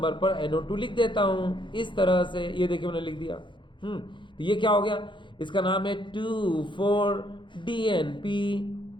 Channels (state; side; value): late; right; 0.23 ms